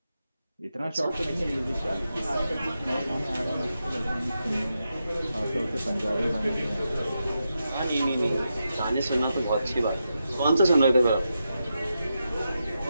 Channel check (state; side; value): inverted; both; correlation -0.87